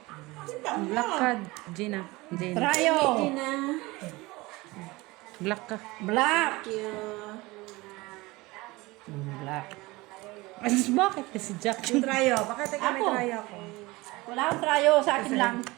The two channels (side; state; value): left; quieter; 21.9 dB